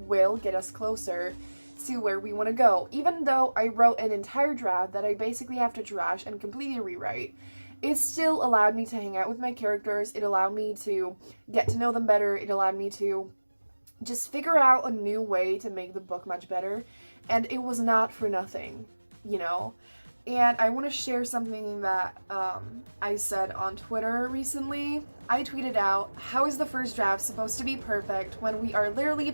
get us closer to where we want to go. Even though I wrote an entire draft that I basically have to trash and completely rewrite, it still allowed me to hang out with my characters. It allowed me to get to know them better. It allowed me to just figure out a new way to make the book much better, and it was not for nothing, And I want to share something that I said on Twitter recently. I tweeted out, how is the first draft supposed to be perfect when we are literally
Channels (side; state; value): both; inverted; correlation -1.00